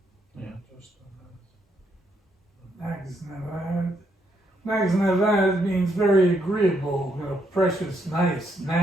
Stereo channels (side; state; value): both; normal; correlation 0.76